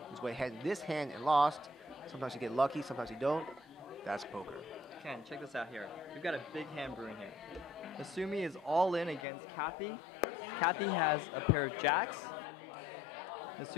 was way ahead in this hand and lost. Sometimes you get lucky, sometimes you don't. That's poker. Ken, check this out here. We've got a big hand brewing here. Nasumi is all in against Kathy. Kathy has a pair of jacks.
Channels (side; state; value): right; drops out; at 9.2 s